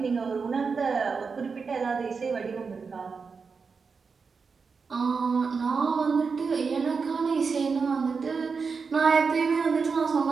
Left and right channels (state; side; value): quieter; left; 5.1 dB